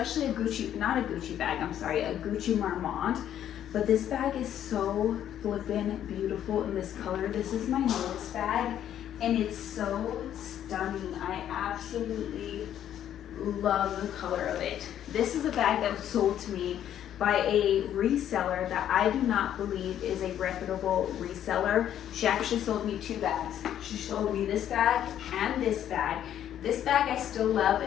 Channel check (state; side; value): quieter; right; 10.6 dB